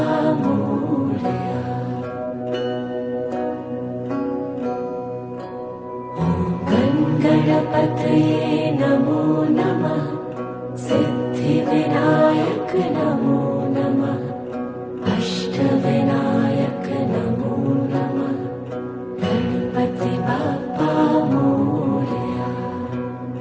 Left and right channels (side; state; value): both; identical; correlation 1.00